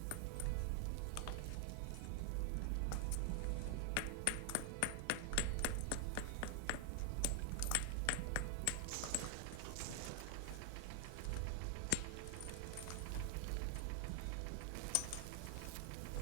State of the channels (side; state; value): both; different; correlation 0.00